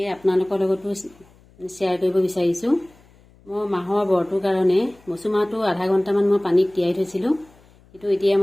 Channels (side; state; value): left; noise; hum, 28 dB below the sound